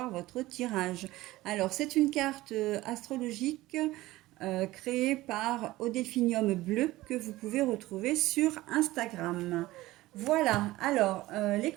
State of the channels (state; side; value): quieter; left; 17.8 dB